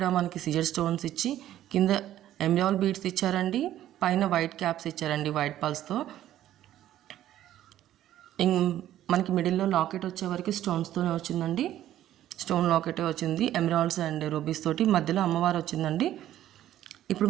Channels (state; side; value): quieter; left; 12.6 dB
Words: మనకి సిజర్ స్టోన్స్ ఇచ్చి కింద ఎమరాల్డ్ బీడ్స్ ఇచ్చారండి, పైన వైట్ క్యాప్స్ ఇచ్చారండి వైట్ పల్స్తో. మనకి మిడిల్లో లాకెట్ వచ్చేవరకు స్టోన్స్తోనే వచ్చిందండి. స్టోన్ లాకెటే వచ్చింది, ఎమరాల్డ్స్ అండ్ రూబీస్ తోటి. మధ్యలో అమ్మవారు వచ్చిందండి. ఇప్పుడు